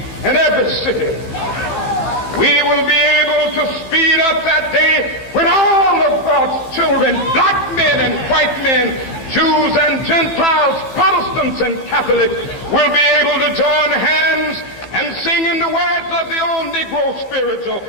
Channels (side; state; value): right; late; 15 ms